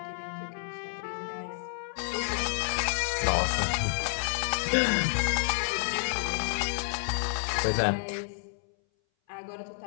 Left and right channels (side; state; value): right; silent; 58 dB below the other